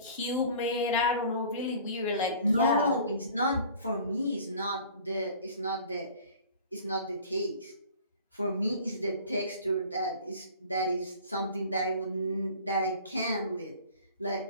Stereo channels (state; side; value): inverted; both; correlation -0.46